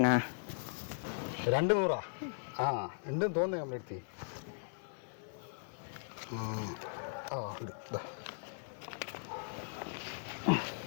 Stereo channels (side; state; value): right; silent; 52 dB below the other